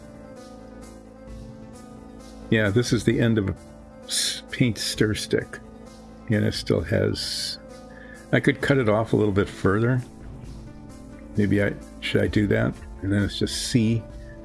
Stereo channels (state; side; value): identical; both; correlation 1.00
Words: Yeah, this is the end of a paint stir stick. And it still has... I could cut it off a little bit further. Maybe should I do that? And then it's just C.